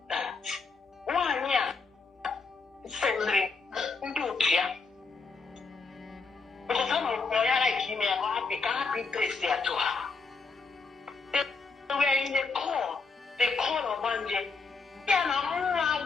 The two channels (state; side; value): quieter; right; 4.3 dB